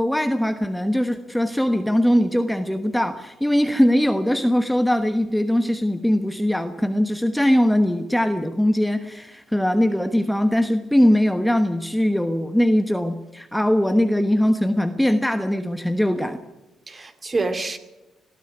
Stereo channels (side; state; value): both; normal; correlation 0.98